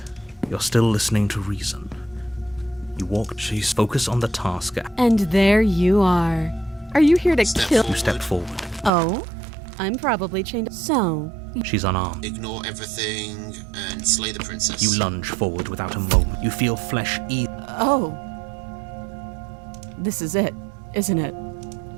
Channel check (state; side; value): drops out; left; at 8.9 s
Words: You're still listening to reason. You walk... She's focused on the task. And there you are. Are you here to Step kill? You step forward. Oh, I'm probably chained. So, She's unarmed. Ignore everything and slay the princess. You lunge forward without a moment. You feel flesh eat. oh. This is it, isn't it?